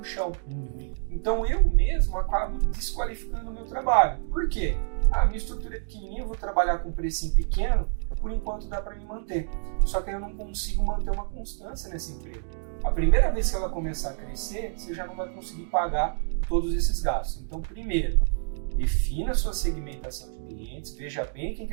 chão. Então eu mesmo acabo desqualificando o meu trabalho. Por quê? Minha estrutura é pequenininha, eu vou trabalhar com um precinho pequeno, por enquanto dá para me manter. Só que eu não consigo manter uma constância nesse emprego. A primeira vez que ela começar a crescer, você já não vai conseguir pagar todos esses gastos. Então, primeiro, defina a sua segmentação de clientes, veja bem quem que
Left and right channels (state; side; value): silent; left; digital silence